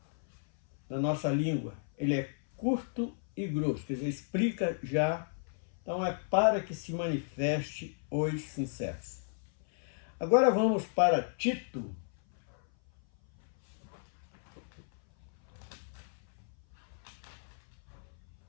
língua, ele é curto e grosso, quer dizer, explica já. Então é para que se manifeste os sinceros. Agora vamos para Tito.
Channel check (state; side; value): silent; right; 55 dB below the other